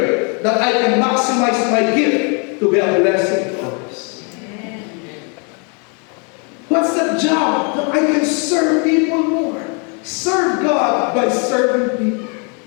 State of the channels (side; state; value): right; quieter; 36.2 dB